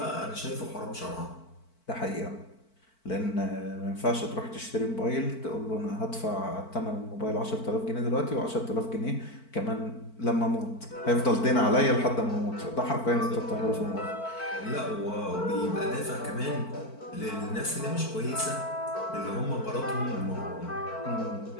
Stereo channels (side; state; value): right; late; 4.5 ms